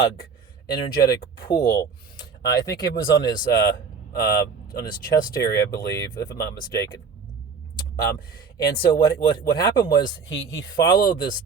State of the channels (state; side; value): quieter; left; 5.5 dB